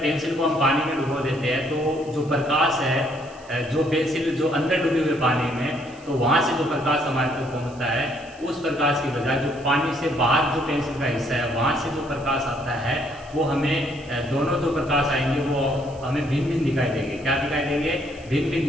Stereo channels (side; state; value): right; noise; hiss, 26 dB below the sound